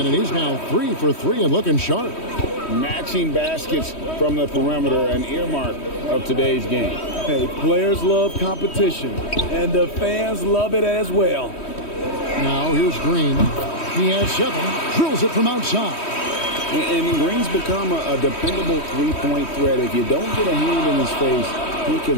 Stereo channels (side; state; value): right; late; 3.1 ms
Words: and he's now 3 for 3 and looking sharp. Matching baskets from the perimeter, an earmark of today's game. Hey, players love competition, and the fans love it as well. Now here's Green. He has 7. Drills it from outside. And Green's become a dependable three-point threat. If you don't get a hand in his face, he